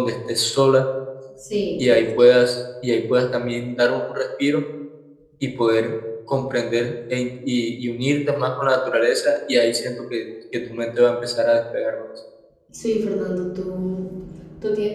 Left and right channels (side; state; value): both; identical; correlation 1.00